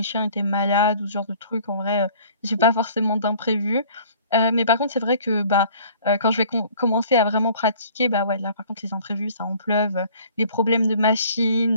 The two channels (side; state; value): both; inverted; correlation -0.52